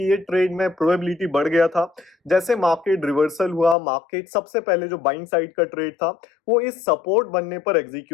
ये ट्रेड में प्रोबेबिलिटी बढ़ गया था, जैसे मार्केट रिवर्सल हुआ, मार्केट सबसे पहले जो बाइंग साइड का ट्रेड था वो इस सपोर्ट बनने पर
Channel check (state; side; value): drops out; right; at 3.8 s